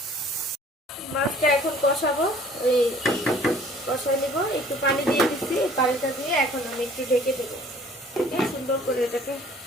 মাছটা এখন কষাবো, ওই কষায় নিব, একটু পানি দিয়ে দিচ্ছি, এই পানিটা দিয়ে এখন আমি একটু ঢেকে দেবো। সুন্দর করে এটাকে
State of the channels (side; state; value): both; normal; correlation 0.54